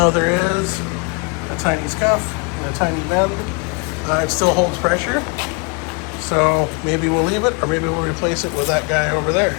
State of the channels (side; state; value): right; quieter; 33.0 dB